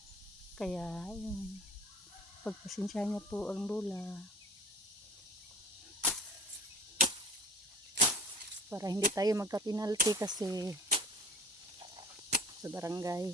Kaya yun. Pagpasensya niya po ang lola. Para hindi tayo magka-penalty kasi sa barangay.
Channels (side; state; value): both; normal; correlation 0.41